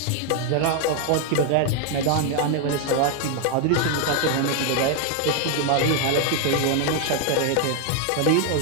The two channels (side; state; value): both; different; correlation 0.00